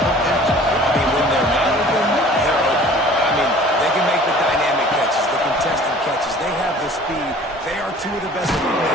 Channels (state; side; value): normal; both; correlation 0.48